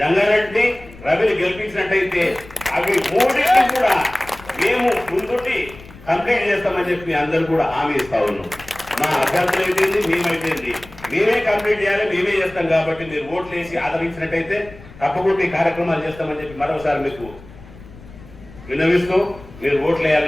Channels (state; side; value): noise; left; rumble, 19 dB below the sound